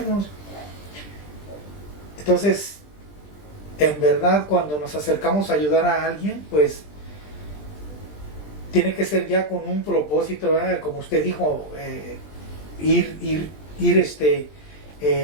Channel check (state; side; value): late; right; 20 ms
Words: Entonces, en verdad, cuando nos acercamos a ayudar a alguien, pues tiene que ser ya con un propósito, ¿verdad? Como usted dijo, ir